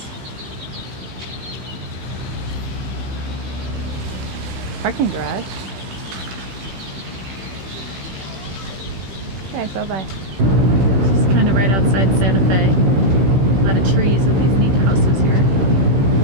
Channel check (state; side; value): late; left; 15 ms